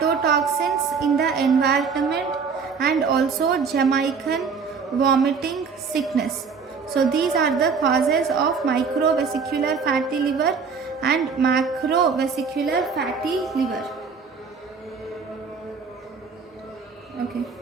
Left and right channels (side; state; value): left; quieter; 5.5 dB